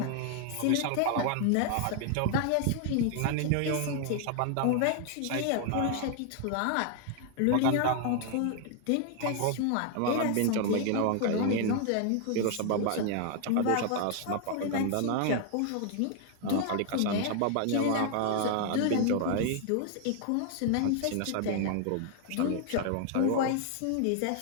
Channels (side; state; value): both; different; correlation 0.00